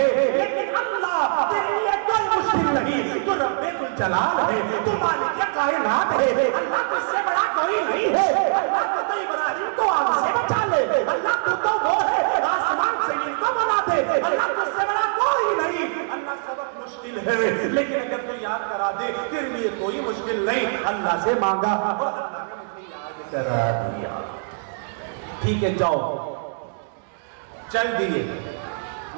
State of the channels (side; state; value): left; silent; digital silence